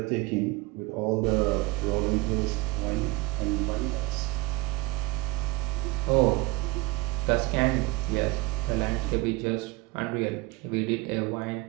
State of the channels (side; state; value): left; quieter; 21.8 dB